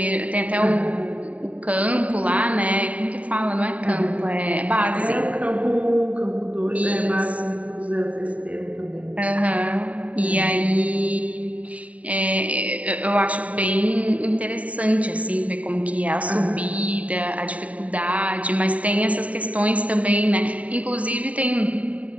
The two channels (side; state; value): left; late; 0.068 ms